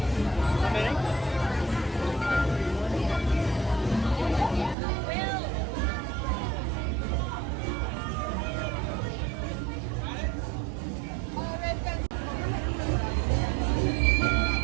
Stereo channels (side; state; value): left; drops out; at 4.8 s